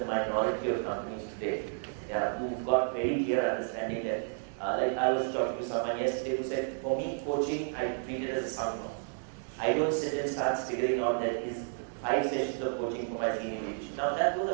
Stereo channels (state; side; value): silent; left; digital silence